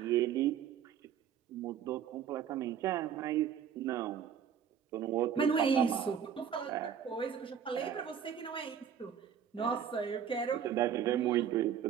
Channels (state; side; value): quieter; left; 8.3 dB